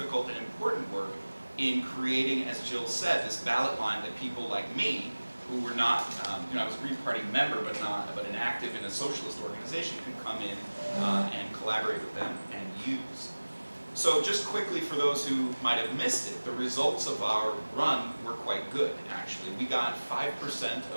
and important work in creating, as Jill said, this ballot line that people like me, who were not, I was a Green Party member, but an active in a socialist organization, could come in and collaborate with them and use. So just quickly, for those who might have missed it, the results of our run were quite good, actually. We got 5%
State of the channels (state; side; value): inverted; both; correlation -1.00